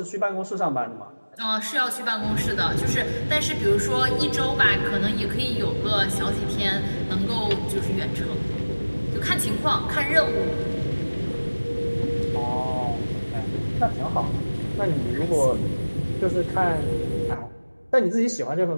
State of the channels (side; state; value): both; inverted; correlation -1.00